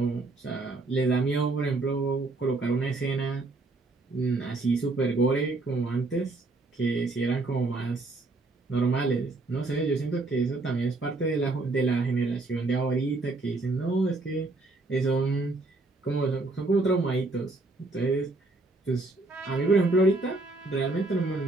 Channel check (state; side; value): quieter; left; 3.2 dB